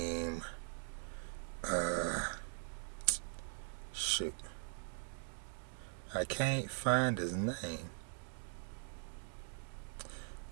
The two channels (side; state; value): left; silent; digital silence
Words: Shoot, I can't find his name.